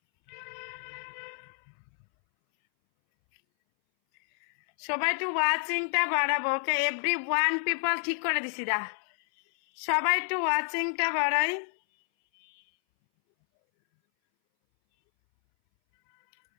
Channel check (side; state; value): right; silent; 59 dB below the other